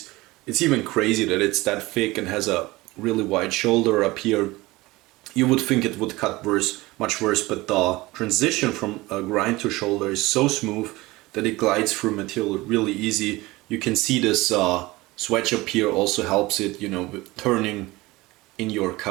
It's even crazy that it's that thick and has a really wide shoulder up here. You would think it would cut much worse, but the transition from a grind to shoulder is so smooth that it glides through material really easy. You can see this swedge up here also helps it, you know, with turning in your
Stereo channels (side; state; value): left; quieter; 20.6 dB